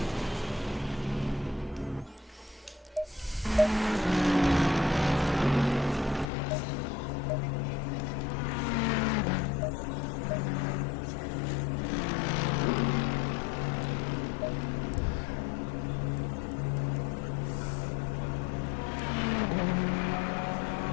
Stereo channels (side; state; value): right; drops out; at 6.2 s